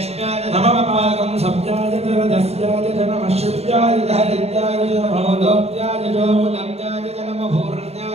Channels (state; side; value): late; left; 0.30 ms